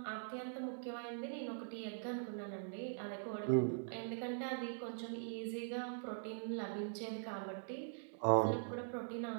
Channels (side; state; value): left; silent; digital silence